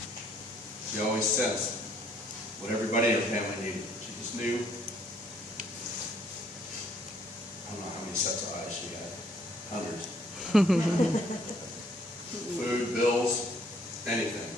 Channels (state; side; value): normal; both; correlation 0.65